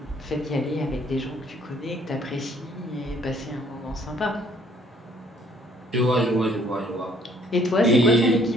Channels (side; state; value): both; normal; correlation 0.61